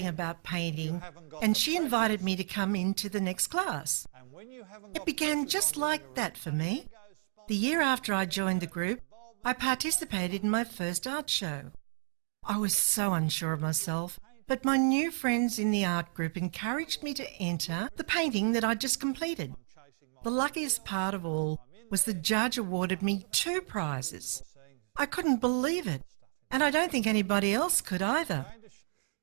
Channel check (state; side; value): silent; left; digital silence